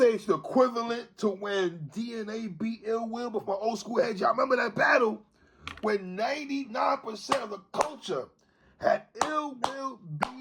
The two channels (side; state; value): both; identical; correlation 1.00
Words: it's the equivalent to when DNA beat Ill Will, but for my old school heads, y'all remember that battle when 99% of the culture had Ill Will